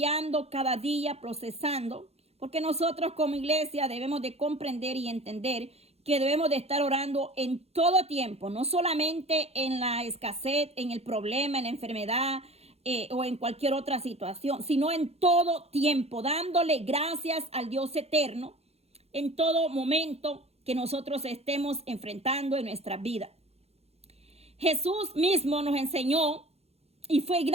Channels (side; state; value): left; late; 0.30 ms